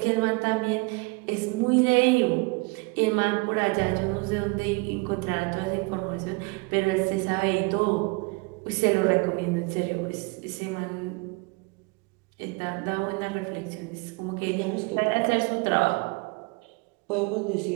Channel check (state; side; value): quieter; left; 28.0 dB